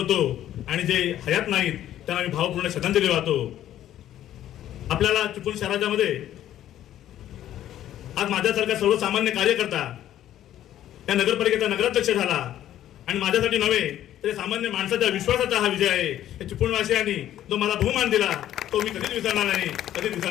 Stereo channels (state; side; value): quieter; right; 12.1 dB